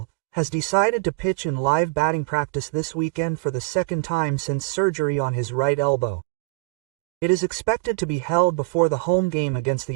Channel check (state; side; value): quieter; left; 27.5 dB